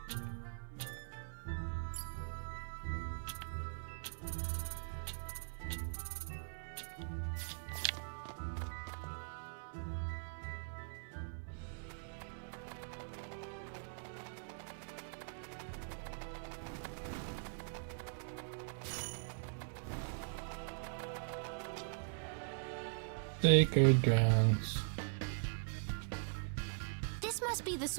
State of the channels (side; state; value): left; silent; digital silence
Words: Sacred grounds. This must be the